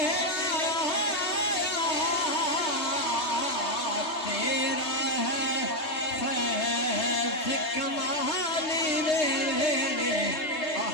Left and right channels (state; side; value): late; right; 3.2 ms